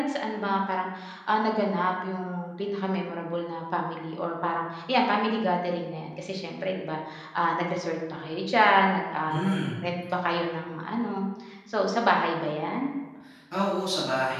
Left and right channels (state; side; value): identical; both; correlation 1.00